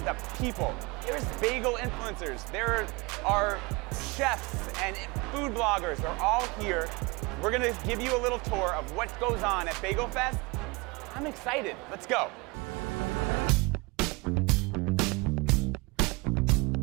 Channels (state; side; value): quieter; left; 26.0 dB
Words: people. There's bagel influencers. There are chefs and food bloggers. They're all here. We're gonna give you a little tour of what goes on at Bagel Fest. I'm excited. Let's go.